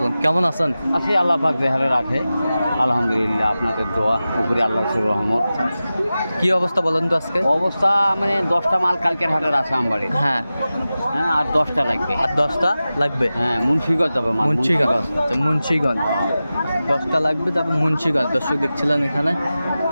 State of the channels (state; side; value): inverted; both; correlation -0.95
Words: কেমন আছেন? আছি, আল্লাহ পাক দেহারে রাখে, আলহামদুলিল্লাহ। আপনাদের দোয়া উপরে আল্লাহর রহমত। কি অবস্থা বলেন তো আজকে? অবস্থা মানে 10টা মাল কালকের হাটের আছে আমবাড়ি। হ্যাঁ, আর 10টা লাগবে। আর 10টা লাগবে। হ্যাঁ, মুন্সিগঞ্জ যাবে। মুন্সিগঞ্জ, মুন্সিগঞ্জ 10টা লাগবে। তারপর মুন্সিগঞ্জ। দর্শক দেখছিলেন এখানে